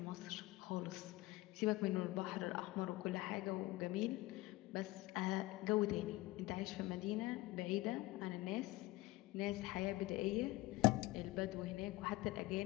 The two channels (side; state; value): right; quieter; 19.7 dB